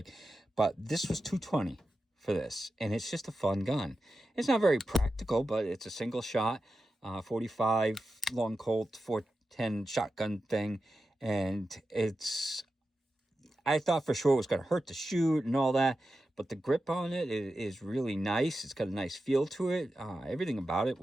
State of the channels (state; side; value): normal; both; correlation 0.91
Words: But this was $220 for this. And it's just a fun gun. It's not very practical, but it's a single shot, 45 long Colt 410 shotgun thing. And I thought for sure it was going to hurt to shoot and all that. But the grip on it is really nice. It's got a nice feel to it. Everything about it